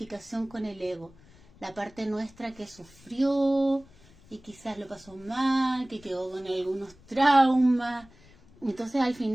con el ego. La parte nuestra que sufrió y quizás lo pasó mal, que quedó con algunos traumas. Entonces al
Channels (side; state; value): left; noise; rumble, 26 dB below the sound